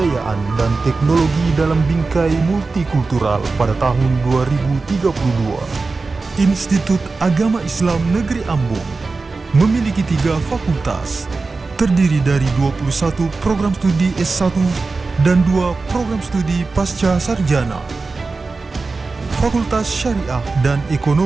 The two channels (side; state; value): left; quieter; 3.9 dB